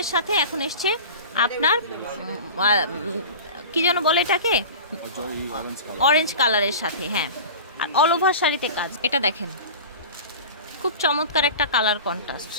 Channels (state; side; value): inverted; both; correlation -0.34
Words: সাথে, এখন এসছে আপনার কি যেন বলে এটাকে, অরেঞ্জ কালারের সাথে। হ্যাঁ, আর অল ওভার শাড়িতে কাজ। এটা দেখেন খুব চমৎকার একটা কালার কন্ট্রাস্ট,